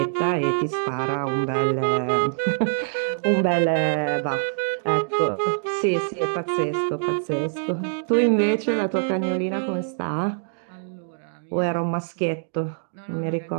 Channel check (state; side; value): silent; left; digital silence